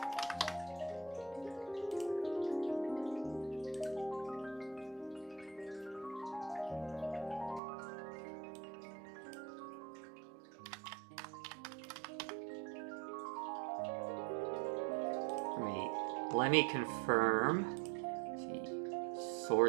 Let me confirm. Let's see.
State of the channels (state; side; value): drops out; left; at 7.6 s